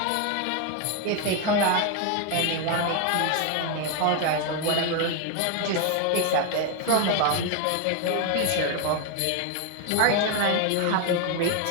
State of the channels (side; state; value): both; different; correlation 0.01